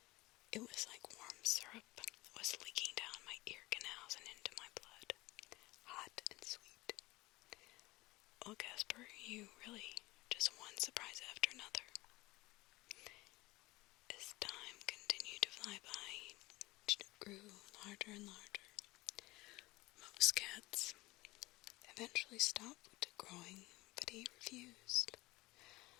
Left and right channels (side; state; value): right; quieter; 20.6 dB